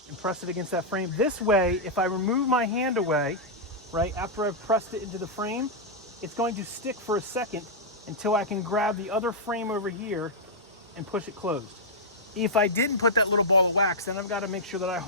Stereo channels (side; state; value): both; normal; correlation -0.07